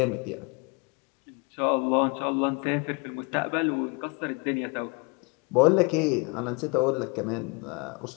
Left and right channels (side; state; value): right; quieter; 30.9 dB